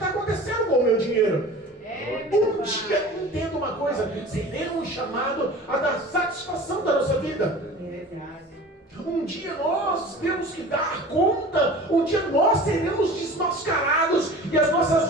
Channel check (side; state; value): both; normal; correlation 0.40